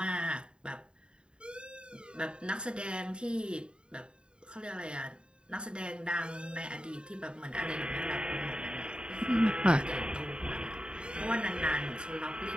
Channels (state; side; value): late; left; 0.051 ms